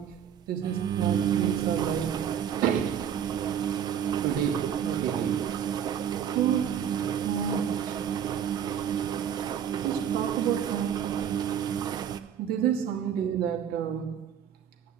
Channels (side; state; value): left; quieter; 8.8 dB